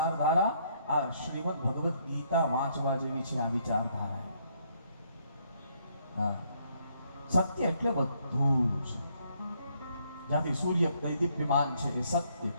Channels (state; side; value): inverted; both; correlation -0.70